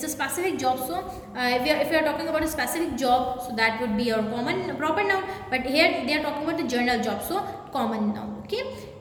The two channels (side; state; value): both; identical; correlation 1.00